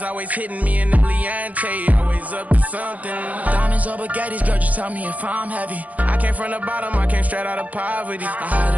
always hitting me in the Leontay, always up to something. Diamonds or baguettes, girl, just tell me if I'm heavy. I came from the bottom, I came straight out of poverty. I had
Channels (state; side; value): late; left; 0.074 ms